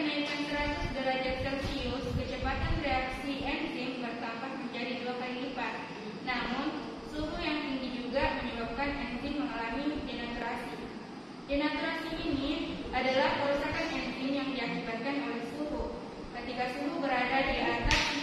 100 derajat Celcius, kecepatan reaksi enzim bertambah menjadi 2 kali lipat. Namun, suhu yang tinggi juga menyebabkan enzim mengalami denaturasi. Denaturasi ini adalah kerusakan enzim yang diakibatkan oleh suhu. Ketika suhu berada di atas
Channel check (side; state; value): both; identical; correlation 1.00